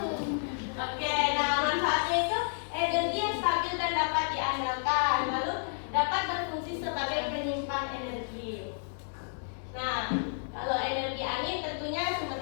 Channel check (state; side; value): silent; right; digital silence